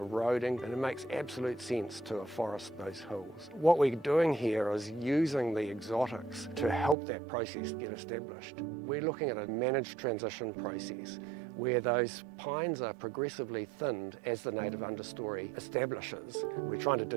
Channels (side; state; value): left; drops out; at 7.0 s